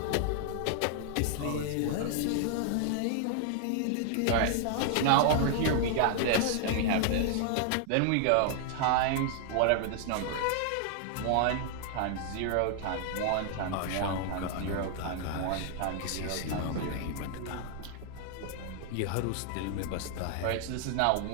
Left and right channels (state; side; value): different; both; correlation 0.00